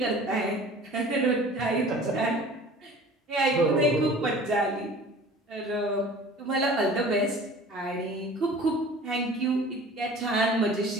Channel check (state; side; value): normal; both; correlation 0.44